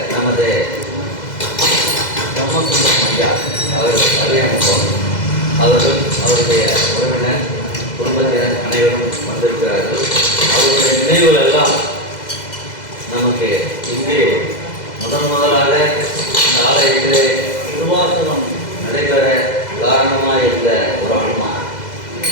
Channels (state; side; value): late; right; 2.0 ms